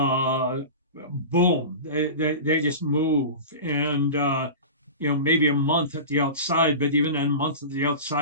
they just move. And, maybe a month at the outside, but even a month at the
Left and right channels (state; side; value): inverted; both; correlation -0.31